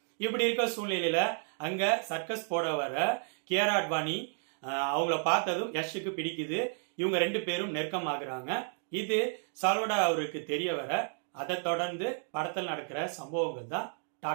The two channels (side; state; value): left; silent; 56 dB below the other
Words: இப்படி இருக்க சூழ்நிலையில அங்க சர்க்கஸ் போட வர கியாரா அத்வானி அவங்கள பார்த்ததும் யஷுக்கு பிடிக்குது. இவங்க ரெண்டு பேரும் நெருக்கமாகறாங்க. இது சால்வடார் அவருக்கு தெரிய வர அதை தொடர்ந்து படத்தில் நடக்கிற சம்பவங்கள் தான்